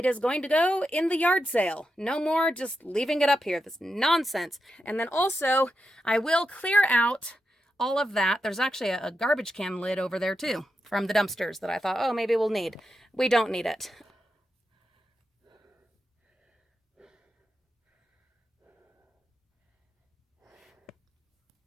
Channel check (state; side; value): normal; both; correlation 0.87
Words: is going to go in the yard sale. No more just leaving it up here. This nonsense. And then also, I will clear out all of that. There's actually a garbage can lid over there too from the dumpsters that I thought, oh, maybe we'll need. We don't need it.